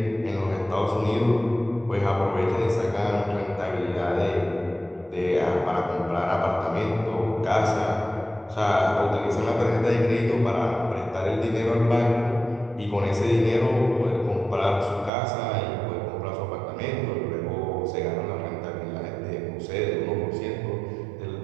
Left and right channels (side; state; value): left; drops out; at 15.1 s